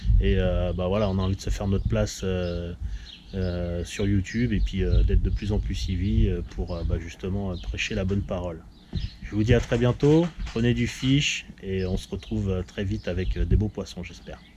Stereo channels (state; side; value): identical; both; correlation 1.00